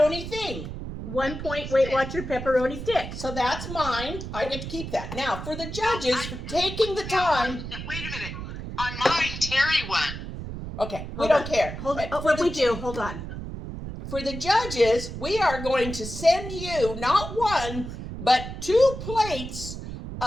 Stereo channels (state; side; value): noise; right; rumble, 8 dB below the sound